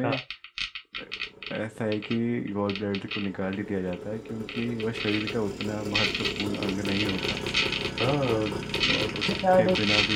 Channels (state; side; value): identical; both; correlation 1.00